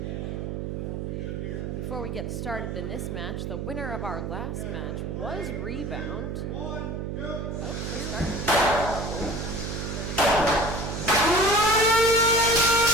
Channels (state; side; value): noise; right; hum, 4 dB below the sound